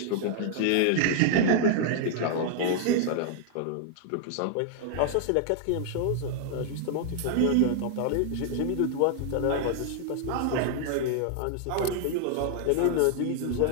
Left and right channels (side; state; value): both; different; correlation 0.00